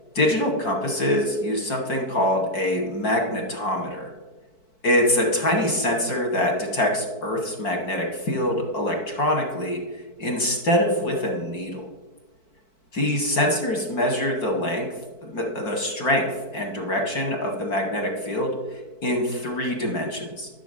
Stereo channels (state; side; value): late; right; 4.6 ms